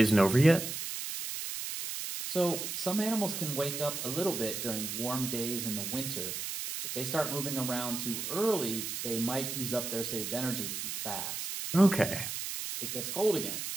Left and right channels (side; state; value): right; noise; hiss, 4 dB below the sound